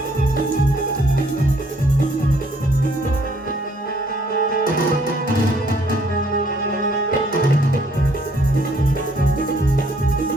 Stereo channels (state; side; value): normal; both; correlation 0.64